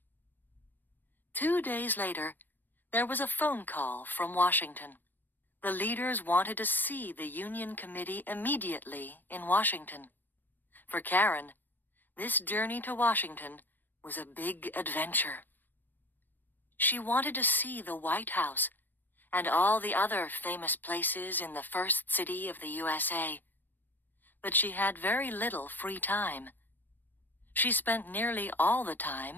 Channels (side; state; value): right; late; 0.091 ms